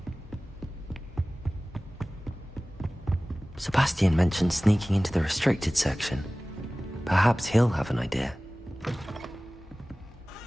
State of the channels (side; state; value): both; normal; correlation 0.98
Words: Sebastian mentioned sneaking into the restricted section. Perhaps he'll have an idea.